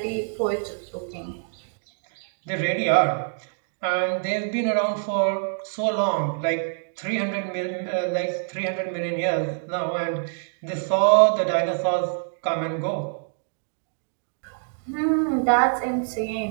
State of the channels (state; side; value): silent; left; 61 dB below the other